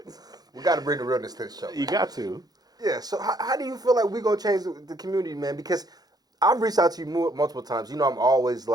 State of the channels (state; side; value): late; left; 0.19 ms